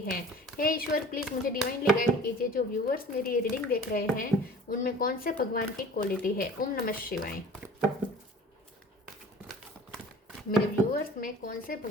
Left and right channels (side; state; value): both; normal; correlation 0.44